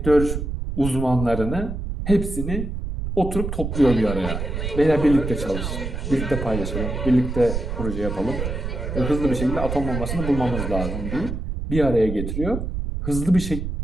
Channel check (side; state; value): right; noise; rumble, 4 dB below the sound